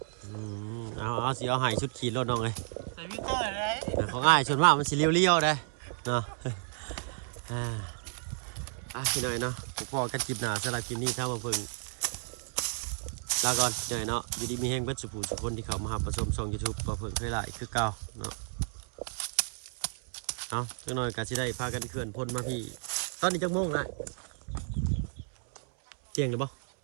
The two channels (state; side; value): silent; left; 56 dB below the other